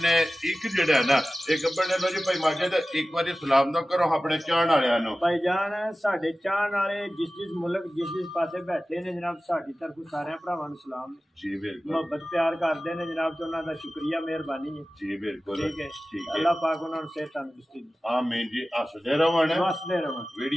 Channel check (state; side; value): normal; both; correlation 0.96